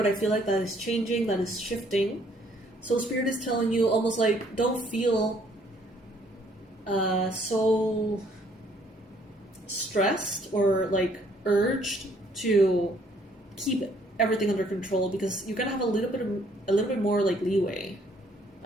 I feel like that is changing, that is shifting. So Spirit is telling you almost like don't feel so stressed or like urged to keep everything under control, because you're gonna have a little bit more like leeway.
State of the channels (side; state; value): both; normal; correlation 0.64